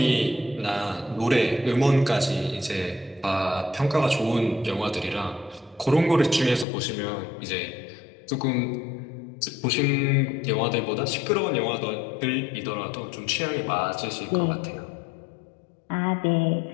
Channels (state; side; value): drops out; right; at 6.7 s